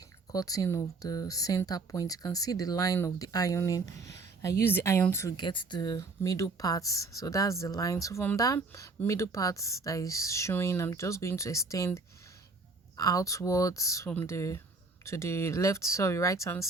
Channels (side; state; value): left; quieter; 3.8 dB